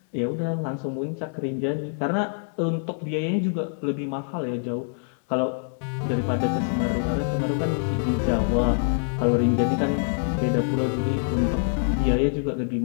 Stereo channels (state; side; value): silent; right; digital silence